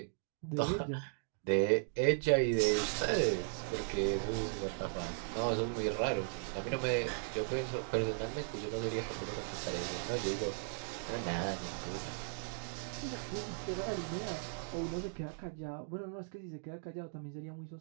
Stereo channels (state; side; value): silent; left; digital silence